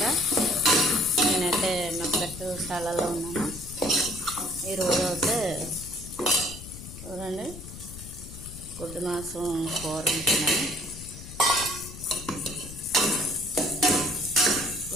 నేనైతే మెక్కశాలలో ఉన్నాను. ఈరోజు అయితే చూడండి, గుడ్డు మాంసం కూర ఉంటున్నాను.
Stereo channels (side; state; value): left; noise; rumble, 13 dB below the sound